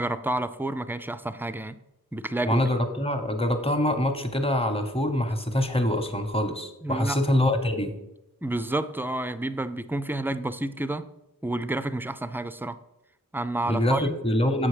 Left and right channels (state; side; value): normal; both; correlation 0.68